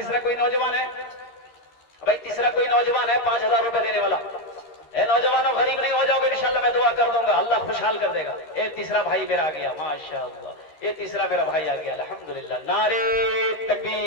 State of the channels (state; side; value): late; right; 13 ms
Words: कोई नौजवान है भाई, तीसरा कोई नौजवान है 5000 रुपए देने वाला। ए नौजवानों, गरीब नहीं हो जाओगे इंशाल्लाह, मैं दुआ कर दूंगा, अल्लाह खुशहाल कर देगा। ए तीसरा भाई मेरा आ गया, माशाअल्लाह, ये तीसरा मेरा भाई आ गया, अल्हम्दुलिल्लाह, नारे